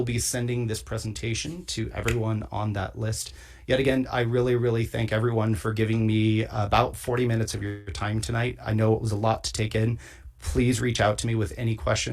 be sending this presentation to everyone on that list. Yet again, I really, really thank everyone for giving me about 40 minutes of your time tonight. I know it was a lot to take in. Please reach out to me with any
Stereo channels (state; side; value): identical; both; correlation 1.00